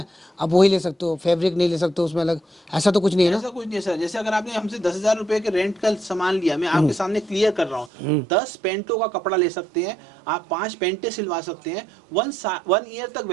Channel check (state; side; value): drops out; left; at 7.9 s